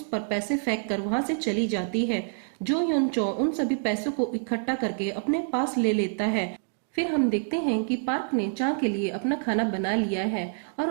पर पैसे फेंक कर वहां से चली जाती है। जो युनचो उन सभी पैसों को इकट्ठा करके अपने पास ले लेता है। फिर हम देखते हैं कि पार्क ने चा के लिए अपना खाना बना लिया है और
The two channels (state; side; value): silent; left; digital silence